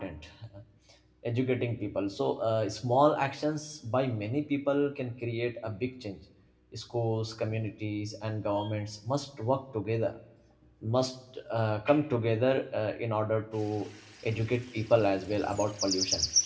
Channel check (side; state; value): both; identical; correlation 1.00